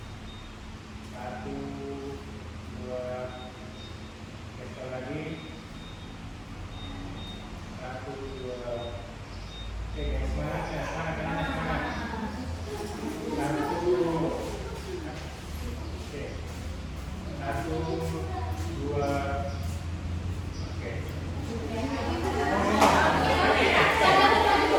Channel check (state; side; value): identical; both; correlation 1.00